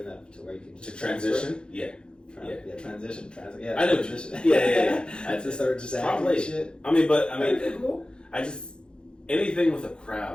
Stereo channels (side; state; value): right; late; 0.051 ms